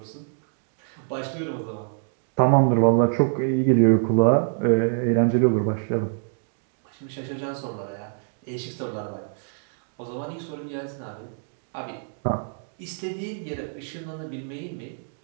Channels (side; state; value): left; silent; digital silence